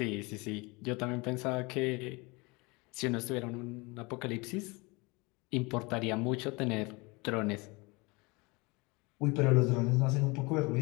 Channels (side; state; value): right; quieter; 26.2 dB